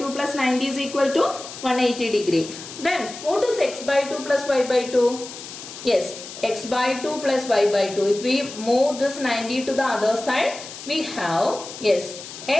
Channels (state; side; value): noise; left; hiss, 13 dB below the sound